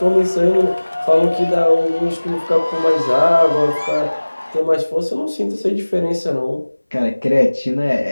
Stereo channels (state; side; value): inverted; both; correlation -1.00